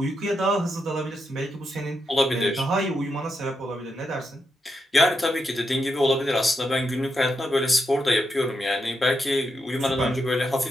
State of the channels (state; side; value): normal; both; correlation 0.84